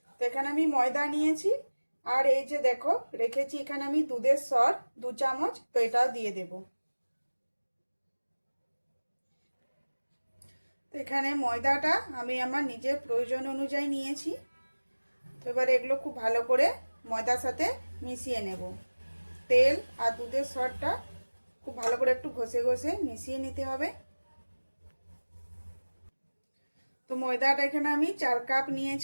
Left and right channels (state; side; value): inverted; both; correlation -1.00